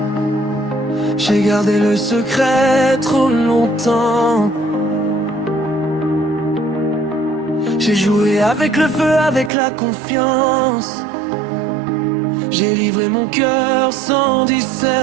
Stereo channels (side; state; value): left; drops out; at 9.5 s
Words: J'ai gardé le secret trop longtemps. J'ai joué avec le feu, avec la confiance. J'ai livré mon cœur sans